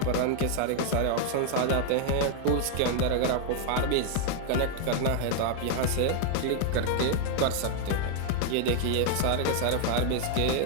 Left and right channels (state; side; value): different; both; correlation 0.00